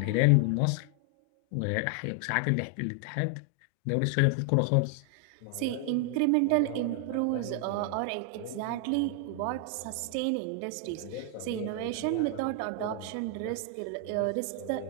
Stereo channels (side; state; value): both; different; correlation 0.00